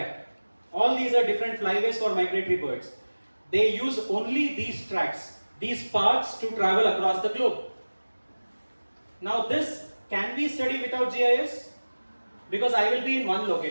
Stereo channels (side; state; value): both; inverted; correlation -1.00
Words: All these are different flyways for migratory birds. They use only these tracks, these paths to travel across the globe. Now this can be studied without GIS, because I will be in one